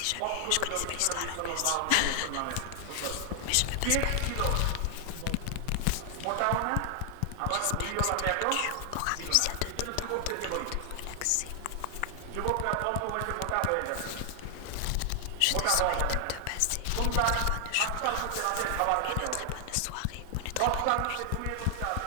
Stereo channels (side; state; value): both; different; correlation 0.00